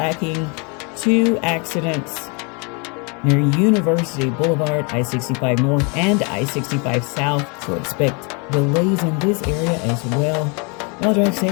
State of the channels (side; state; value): right; quieter; 33.3 dB